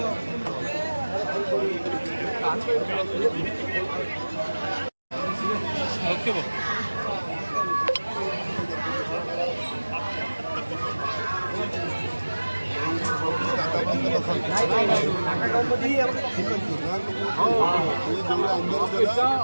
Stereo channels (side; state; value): both; inverted; correlation -1.00